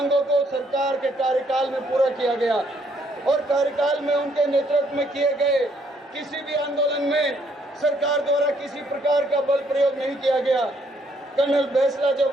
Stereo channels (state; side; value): normal; both; correlation 0.69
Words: को सरकार के कार्यकाल में पूरा किया गया और कार्यकाल में उनके नेतृत्व में किए गए किसी भी आंदोलन में सरकार द्वारा किसी प्रकार का बल प्रयोग नहीं किया गया। कर्नल बेसला